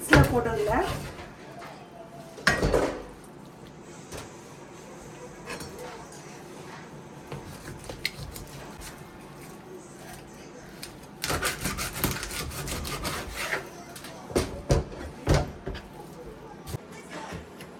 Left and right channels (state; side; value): identical; both; correlation 1.00